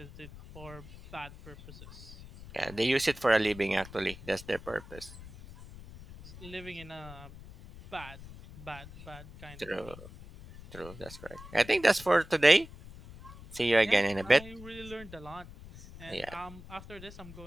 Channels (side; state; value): left; noise; rumble, 16 dB below the sound